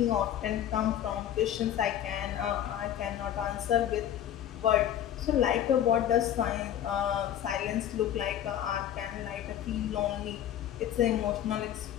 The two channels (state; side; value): quieter; right; 10.7 dB